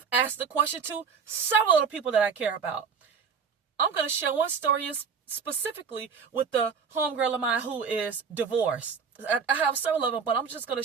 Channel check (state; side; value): quieter; left; 6.1 dB